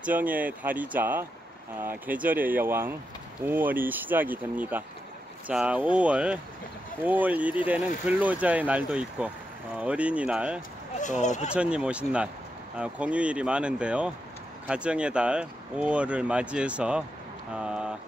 달이자 계절의 여왕 5월이 시작이 됩니다. 자, 5월 1일에는 근로자의 날도 있고 어린이날, 또 부처님 오신 날, 공휴일이 많은데요. 가정의 달 5월을 맞이해서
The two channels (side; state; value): both; normal; correlation 0.86